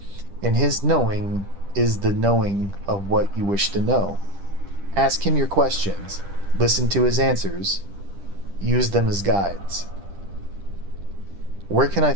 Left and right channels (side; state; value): left; late; 10 ms